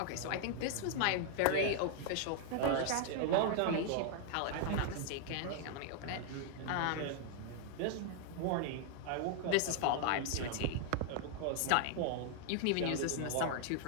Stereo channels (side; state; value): both; different; correlation 0.00